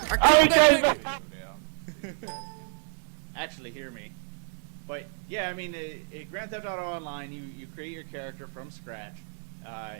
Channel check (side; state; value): left; silent; 58 dB below the other